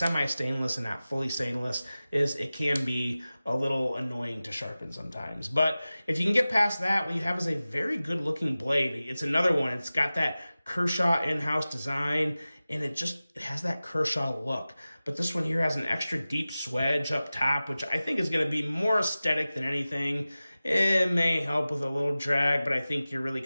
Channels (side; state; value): both; inverted; correlation -0.96